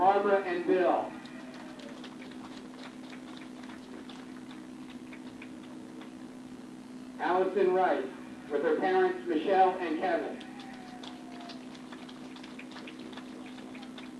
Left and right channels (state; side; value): identical; both; correlation 1.00